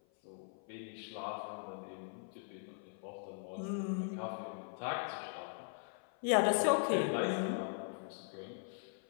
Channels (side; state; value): right; silent; 51 dB below the other